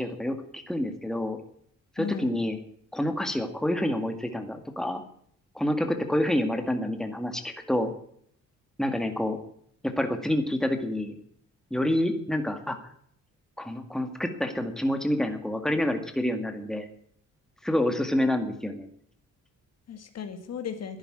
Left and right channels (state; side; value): normal; both; correlation 0.88